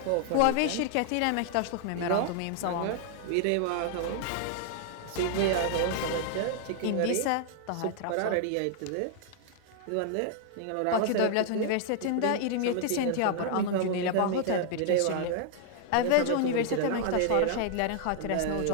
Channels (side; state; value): both; different; correlation 0.00